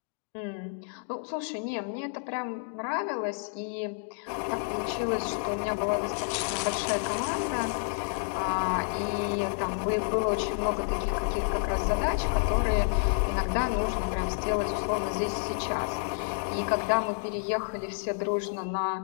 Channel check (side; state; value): right; silent; 58 dB below the other